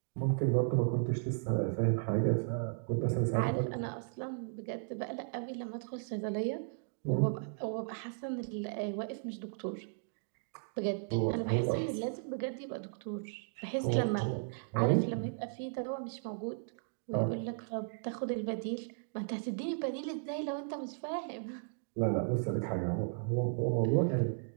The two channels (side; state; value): left; silent; digital silence